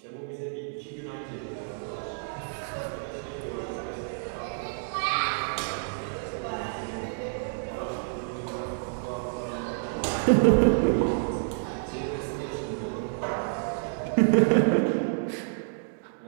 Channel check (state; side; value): silent; left; digital silence